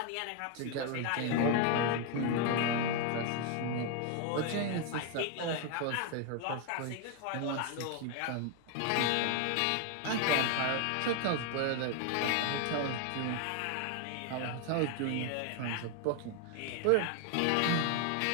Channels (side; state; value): both; different; correlation 0.01